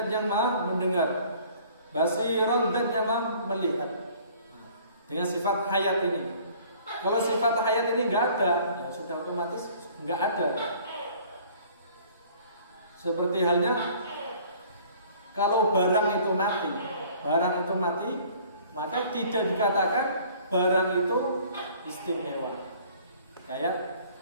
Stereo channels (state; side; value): inverted; both; correlation -0.53